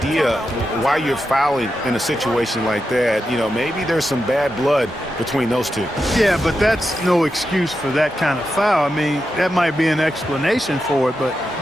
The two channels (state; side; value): normal; both; correlation 0.88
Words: why you're fouling in a situation like that. You know, maybe there's some bad blood between those two. Yeah, but that's no excuse for that kind of foul. I mean, that might be an explanation for it, but